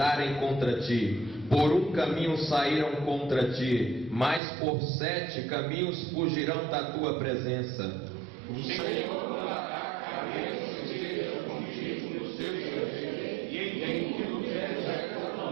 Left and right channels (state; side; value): drops out; left; at 4.4 s